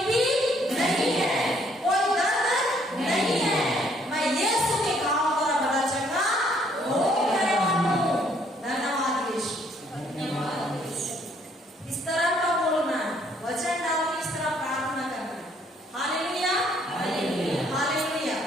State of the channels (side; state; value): both; normal; correlation 0.66